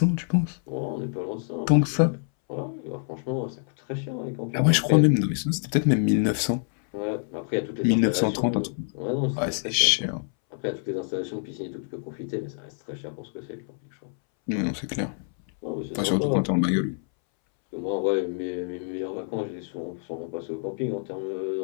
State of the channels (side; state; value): right; silent; 60 dB below the other